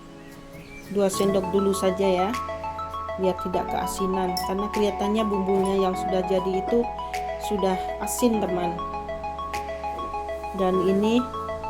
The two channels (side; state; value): both; identical; correlation 1.00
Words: 2 sendok dulu saja ya, biar tidak keasinan, karena kelihatannya bumbunya yang sudah jadi itu sudah asin teman. Dan ini